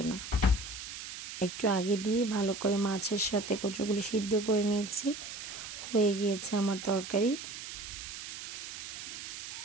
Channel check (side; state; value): right; noise; hiss, 9 dB below the sound